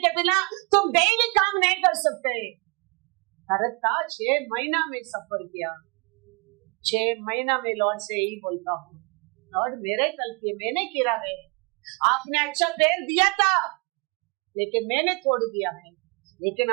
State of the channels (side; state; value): left; quieter; 31.9 dB